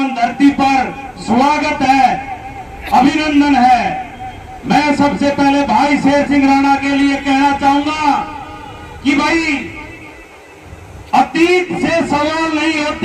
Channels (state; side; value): identical; both; correlation 1.00